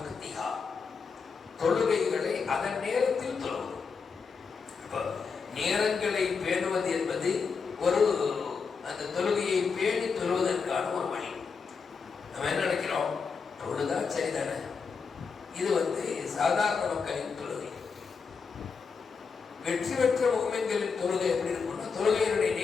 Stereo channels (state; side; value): quieter; right; 5.4 dB